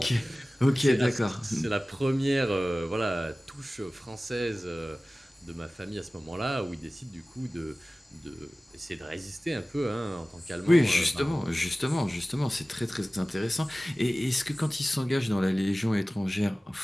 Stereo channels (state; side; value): normal; both; correlation 0.97